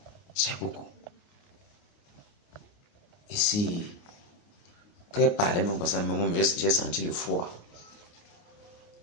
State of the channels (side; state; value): right; late; 29 ms